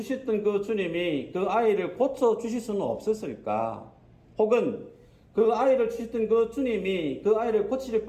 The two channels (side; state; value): both; identical; correlation 1.00